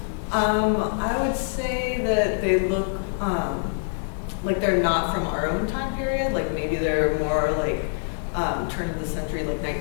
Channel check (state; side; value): silent; right; digital silence